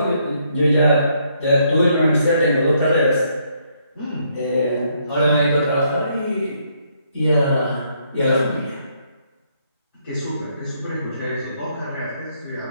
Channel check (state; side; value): inverted; both; correlation -0.72